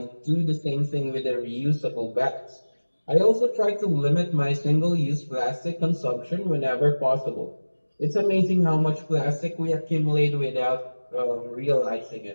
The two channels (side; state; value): both; inverted; correlation -1.00